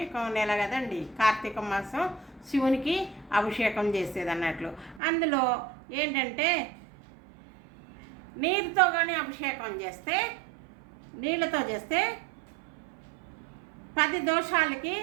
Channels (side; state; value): left; drops out; at 5.0 s